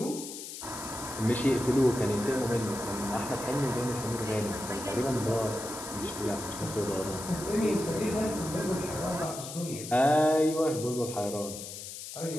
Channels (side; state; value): left; noise; hiss, 10 dB below the sound